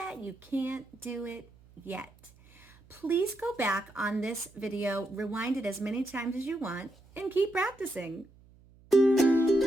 you can't do it yet. Please go back on this video, rewind it as many times as you want, and keep practicing.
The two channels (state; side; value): noise; right; hum, 26 dB below the sound